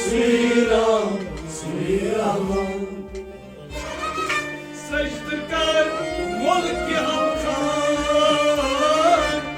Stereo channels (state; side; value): identical; both; correlation 1.00